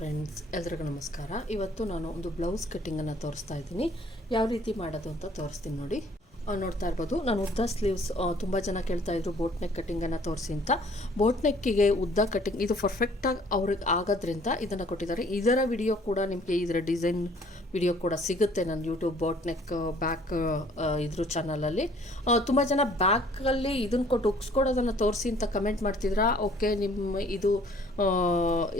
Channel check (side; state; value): both; normal; correlation 0.57